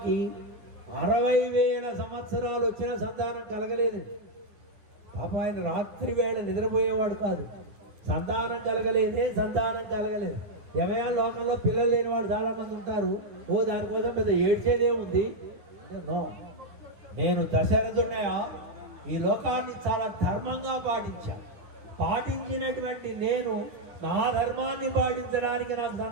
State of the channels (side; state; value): left; late; 9.5 ms